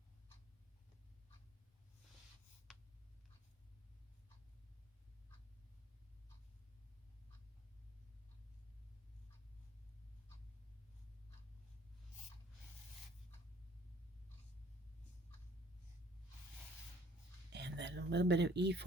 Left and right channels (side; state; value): both; normal; correlation 0.53